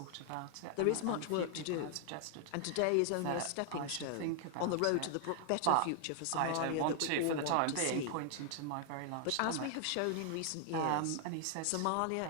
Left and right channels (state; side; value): different; both; correlation 0.00